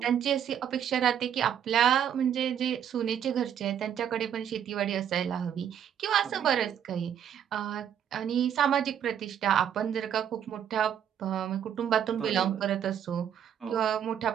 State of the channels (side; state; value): left; quieter; 9.2 dB